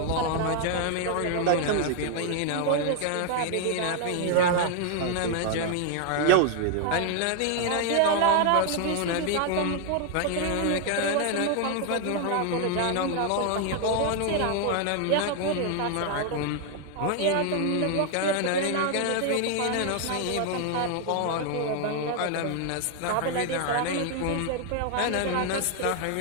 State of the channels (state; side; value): different; both; correlation 0.00